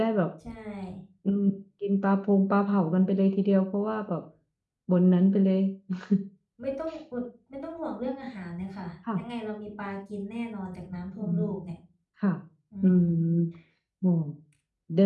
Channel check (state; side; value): identical; both; correlation 1.00